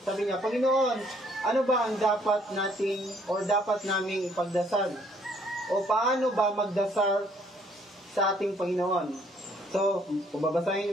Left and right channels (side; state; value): both; normal; correlation 0.64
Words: sabi niya, "Panginoon, ano ba ang dapat nating or dapat naming ipagdasal? O paano ba magdasal sa ating Panginoon?" So, kung babasahin